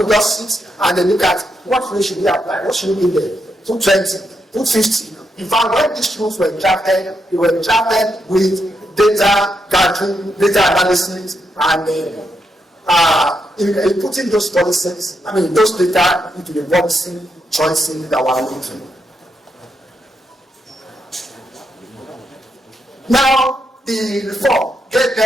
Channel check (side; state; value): both; normal; correlation 0.82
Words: just sit and they look at what rate should we apply, what should we be there, 220, 250. In fact, when these rules were drafted, they were drafted with data gathering, data analysis, and in putting those policies, those data into the policy choices that we're making. Now, the reform gave